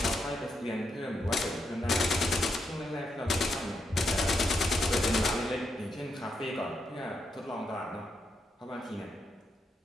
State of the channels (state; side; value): normal; both; correlation 0.81